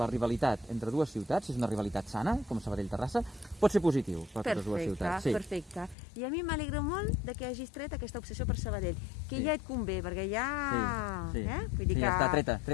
la rivalitat entre dues ciutats, si és una rivalitat sana, com Sabadell-Terrassa, pot ser positiu per totes dues ciutats. Sí. Perfecte. I a mi m'alegra molt de que hagis tret aquesta obsessió per Sabadell, que Sí. ja et convé, perquè ja... Sí. Vull dir Sí, que... ja està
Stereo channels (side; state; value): right; drops out; at 6.0 s